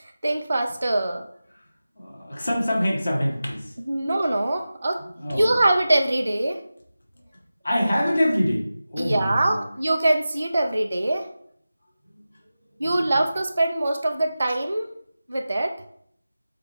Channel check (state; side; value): inverted; both; correlation -0.94